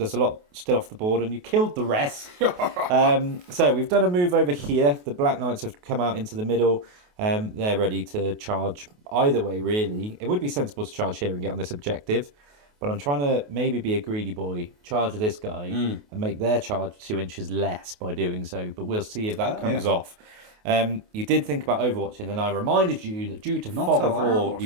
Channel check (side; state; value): left; late; 28 ms